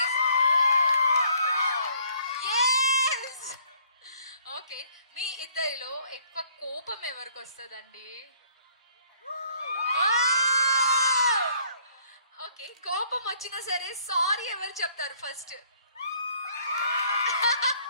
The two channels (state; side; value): inverted; both; correlation -0.62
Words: yes okay. మీ ఇద్దరిలో ఎక్కువ కోపం ఎవరికి వస్తుందండి? ఓకే, కోపం వచ్చినా సరే సారీ ఎవరు చెప్తారు ఫస్ట్?